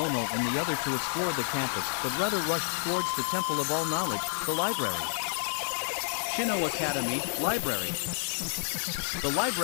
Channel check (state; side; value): silent; right; digital silence